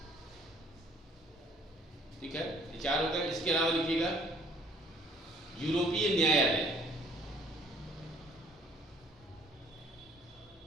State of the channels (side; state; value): both; normal; correlation 0.58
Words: ठीक है, ये 4 हो गए। इसके अलावा लिखिएगा यूरोपीय न्यायालय।